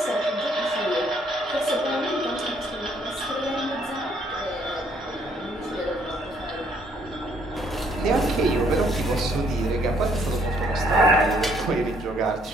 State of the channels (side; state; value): both; normal; correlation 0.66